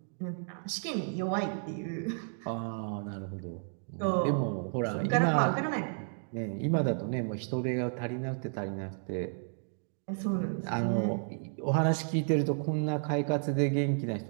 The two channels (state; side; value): silent; left; 56 dB below the other